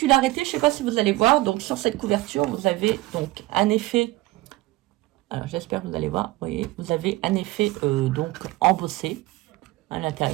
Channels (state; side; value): quieter; left; 19.1 dB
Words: je ne sais pas si vous allez voir, donc sur cette couverture, vous avez donc un effet. Alors, j'espère que vous allez voir. Vous voyez, vous avez un effet donc embossé à